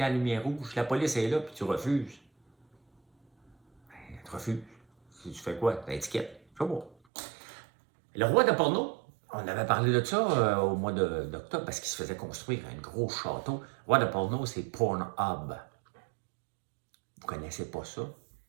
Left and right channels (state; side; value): drops out; left; at 6.9 s